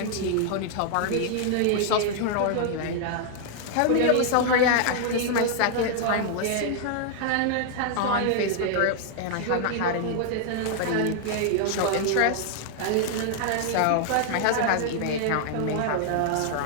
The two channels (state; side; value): different; both; correlation 0.00